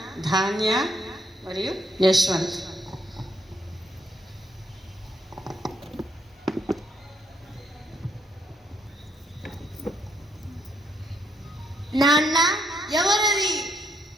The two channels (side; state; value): both; normal; correlation 0.74